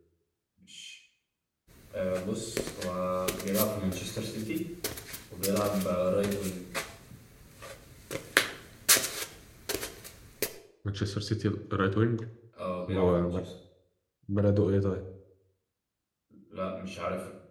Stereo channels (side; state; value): both; identical; correlation 1.00